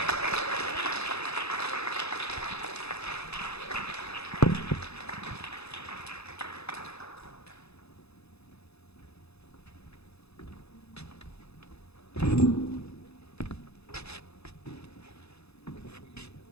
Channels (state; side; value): late; right; 0.79 ms